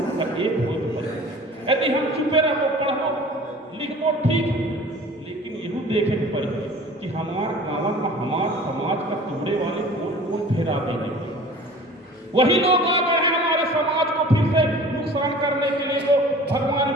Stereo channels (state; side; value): normal; both; correlation 0.44